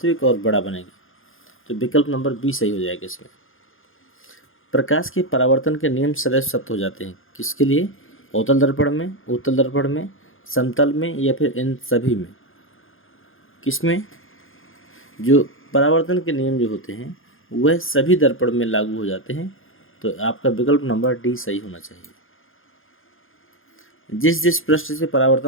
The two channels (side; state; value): right; late; 0.59 ms